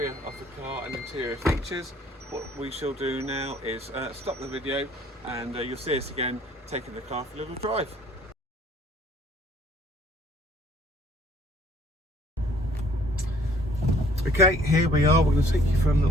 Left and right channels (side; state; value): both; normal; correlation 0.58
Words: of the car and interior features. What we shall do now is stop the video, and you'll see us again taking the car for a little drive. Okay, here we are. We're going to take you for a